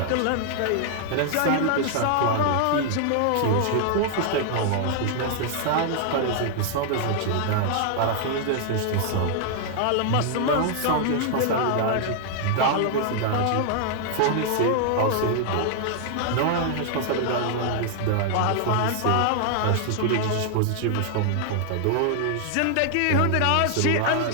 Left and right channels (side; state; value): both; different; correlation 0.00